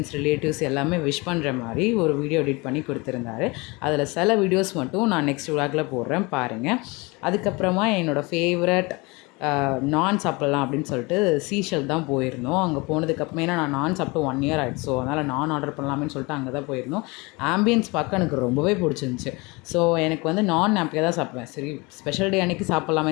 ரிலேட்டிவ்ஸ் எல்லாமே விஷ் பண்ணுற மாதிரி ஒரு வீடியோ எடிட் பண்ணி கொடுத்துருந்தாரு. அதில் சில வீடியோஸ் மட்டும் நான் நெக்ஸ்ட் vlogல போடுறேன் பாருங்கள். அதுக்கப்புறமா என்னோடய ஃபேவரட் நான் சாப்பிட்லாம் அப்படின்னு சொல்லிட்டு சீஷல் தான் போயிருந்தோம். அங்கே போனதுக்கப்புறமே ஏன்னா நான் நான் சாப்பிட்டு 1 இயர் ஆகிடுச்சு. ஸோ அதனால் நான் ஆர்டர் பண்ணலாமேன்னு சொல்லிட்டு அங்கே தான் போயிருந்தோம். ஆம்பியன்ஸ் பார்க்க எனக்கு ரொம்பவே பிடிச்சிருந்துச்சி. ஸோ எனக்கு வந்து நான் அப்படியே தான் சாப்பிடுவேன். சரி ஸ்பெஷல் டே அன்றைக்கி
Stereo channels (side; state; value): right; quieter; 25.9 dB